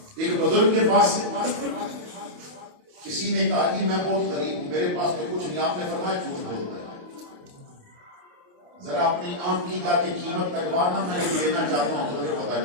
ایک بزرگ کے پاس کسی نے کہا کہ میں بہت غریب ہوں، میرے پاس تو کچھ نہیں، آپ نے فرمایا جھوٹ بولتا ہے، ذرا اپنی آنکھ کی جا کے قیمت لگوانا، میں لینا چاہتا ہوں تو پھر پتا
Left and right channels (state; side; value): late; left; 28 ms